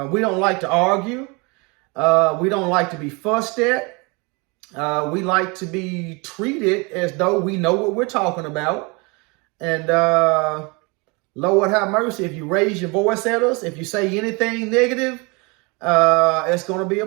We don't like to argue. We don't like to be fussed at. We like to be treated as though we know what we're talking about. And Lord have mercy, if you raise your voice at us, if you say anything negative, it's going to be a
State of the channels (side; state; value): left; quieter; 29.1 dB